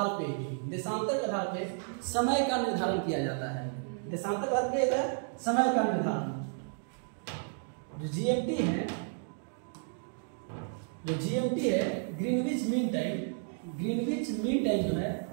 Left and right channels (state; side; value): silent; left; 56 dB below the other